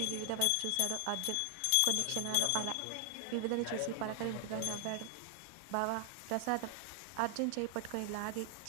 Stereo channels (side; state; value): both; different; correlation 0.00